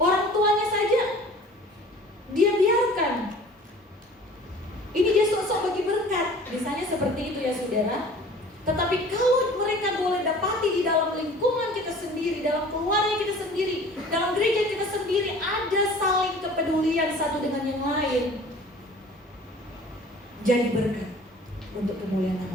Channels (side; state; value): both; normal; correlation 0.46